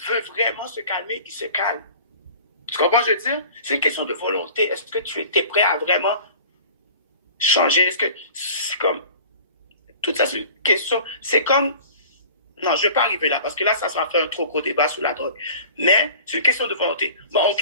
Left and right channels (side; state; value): both; inverted; correlation -0.44